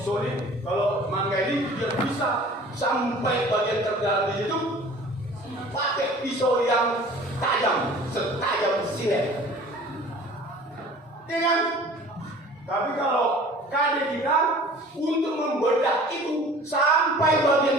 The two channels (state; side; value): normal; both; correlation 0.46